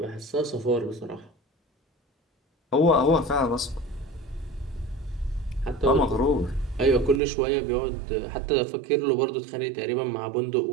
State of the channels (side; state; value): left; drops out; at 7.2 s